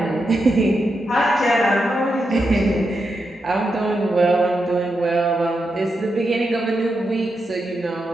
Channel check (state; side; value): normal; both; correlation 0.86